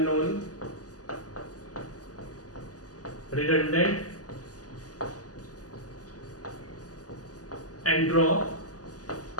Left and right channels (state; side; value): late; right; 0.67 ms